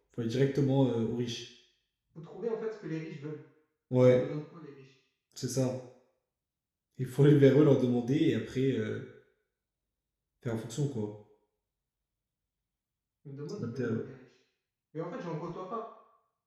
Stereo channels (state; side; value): identical; both; correlation 1.00